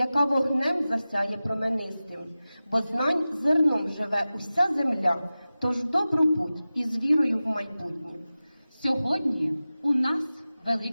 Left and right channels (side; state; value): both; inverted; correlation -0.96